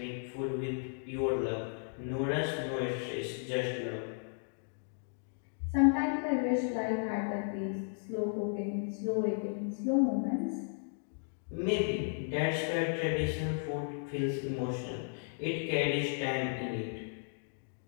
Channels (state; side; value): silent; right; digital silence